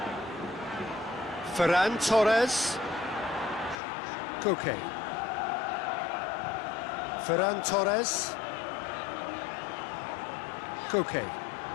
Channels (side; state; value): right; drops out; at 3.8 s